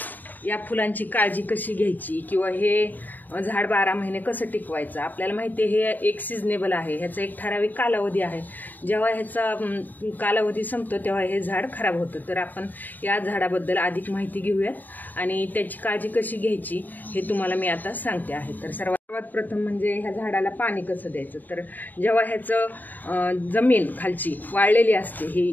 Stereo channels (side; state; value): right; late; 0.088 ms